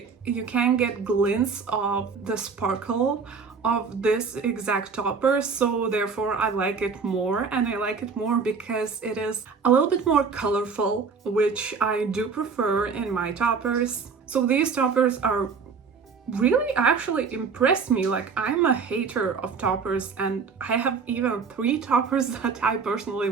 you can get glints of the sparkle of this exact topper, so therefore I like it more, and I like it more because it is a little bit more colorful, which I do prefer in my toppers. So these toppers are really actually impressed me. Like, I'm a hater of toppers and I have even 3 toppers that I personally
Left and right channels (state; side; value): quieter; left; 5.4 dB